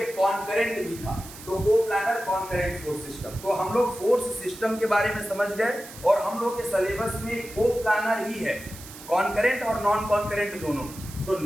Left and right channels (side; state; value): right; noise; hiss, 16 dB below the sound